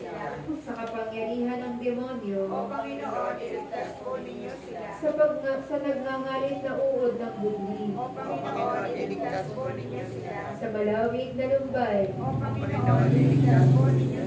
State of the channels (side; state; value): both; identical; correlation 1.00